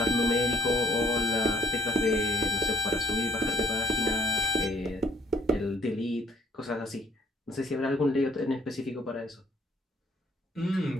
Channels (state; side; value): normal; both; correlation 0.65